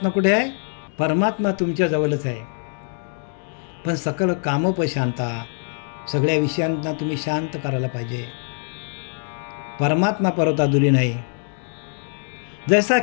कुठे आहे? परमात्मा तुमच्या जवळच आहे. पण सकळ कामोपशांता. सगळ्या विषयांना तुम्ही शांत करायला पाहिजे. परमात्मा परत दुरी नाही. जसा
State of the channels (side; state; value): right; silent; digital silence